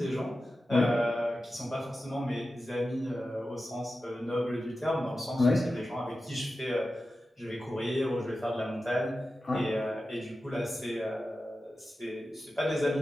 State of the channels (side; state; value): both; normal; correlation 0.93